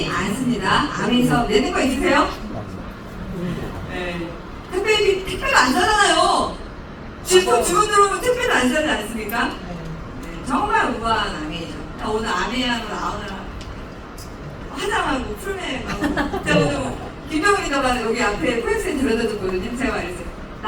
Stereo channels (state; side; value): identical; both; correlation 1.00